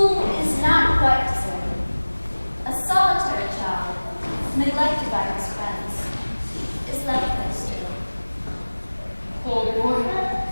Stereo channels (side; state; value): both; inverted; correlation -1.00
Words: is not quite deserted. A solitary child, neglected by his friends, is left there still. Poor boy.